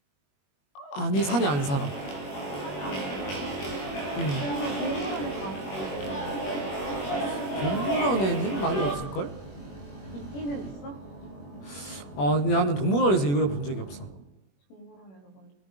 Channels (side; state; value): right; late; 21 ms